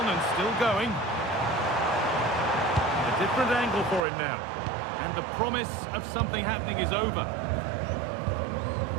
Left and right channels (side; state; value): left; drops out; at 4.0 s